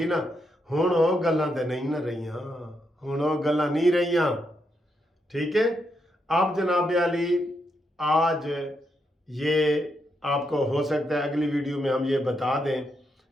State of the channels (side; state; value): both; normal; correlation 0.81